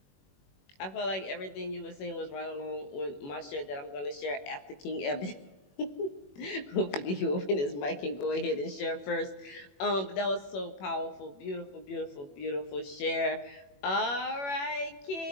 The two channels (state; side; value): late; right; 21 ms